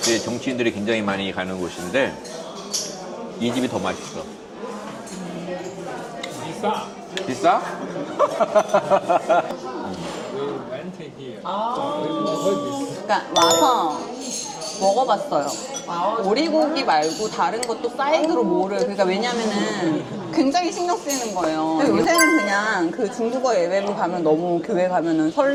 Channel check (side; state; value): both; identical; correlation 1.00